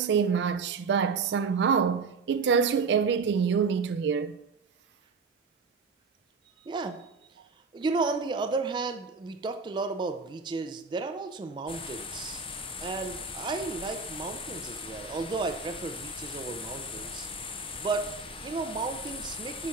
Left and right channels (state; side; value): quieter; left; 4.6 dB